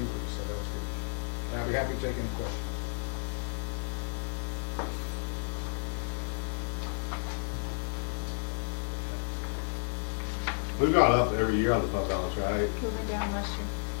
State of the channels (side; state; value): right; silent; 56 dB below the other